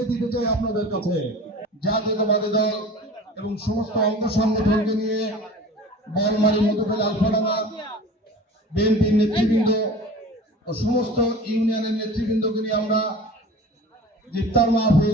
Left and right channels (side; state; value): both; normal; correlation 0.39